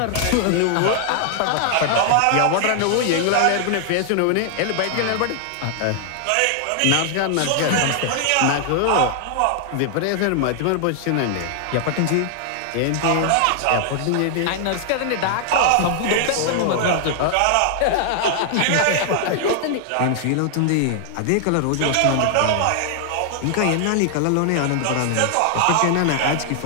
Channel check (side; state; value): both; different; correlation 0.00